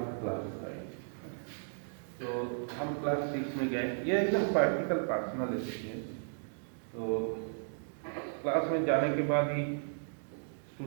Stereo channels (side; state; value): left; silent; digital silence